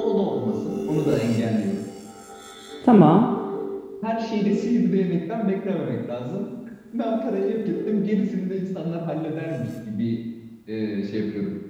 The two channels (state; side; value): identical; both; correlation 1.00